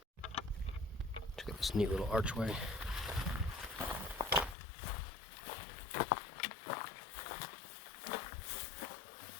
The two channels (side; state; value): right; drops out; at 4.5 s